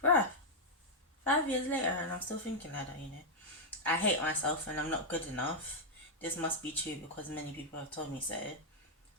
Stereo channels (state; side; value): normal; both; correlation -0.02